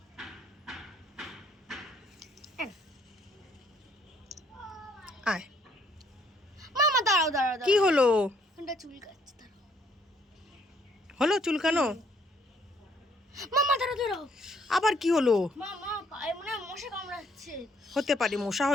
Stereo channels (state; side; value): normal; both; correlation 0.66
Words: আয়। মামা দাঁড়াও দাঁড়াও দাঁড়াও। কি হলো? ওটা চুল কাটছে, দাঁড়াও। হলো চুলকানো? মামা দাঁড়াও দাঁড়াও। আবার কি হলো? মামা পায়ে মনে হয় মশা কামড়াচ্ছে। হতে পারে, মশা